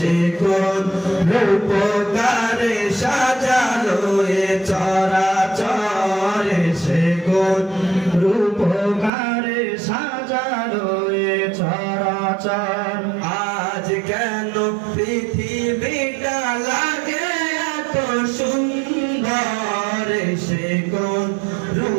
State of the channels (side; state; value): left; drops out; at 9.1 s